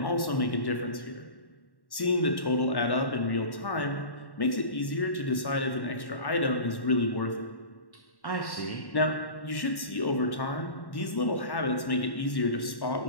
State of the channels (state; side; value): late; right; 1.1 ms